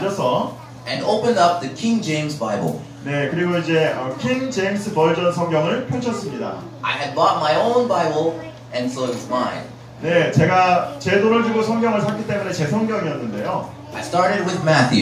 and opened up the King James Bible. 네, 그리고 이제 킹 제임스 버전 성경을 펼쳤습니다. I had bought my own Bible, and so it was mine. 네, 제가 제 돈을 주고 성경을 샀기 때문에 제 성경이었는데요. I started with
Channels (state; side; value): identical; both; correlation 1.00